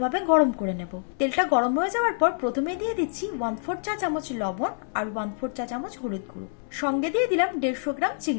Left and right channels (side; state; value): right; silent; 61 dB below the other